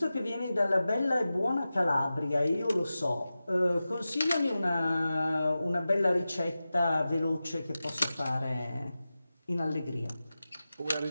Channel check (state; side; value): inverted; both; correlation -0.94